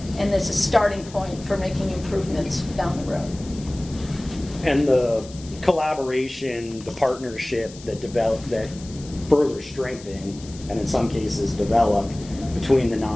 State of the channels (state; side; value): noise; left; hiss, 19 dB below the sound